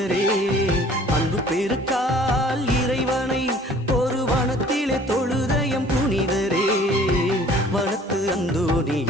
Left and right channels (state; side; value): normal; both; correlation 0.52